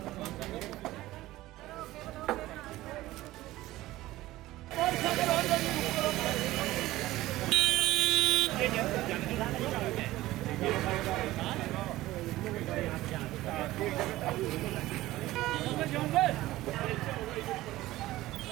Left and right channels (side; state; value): left; quieter; 16.8 dB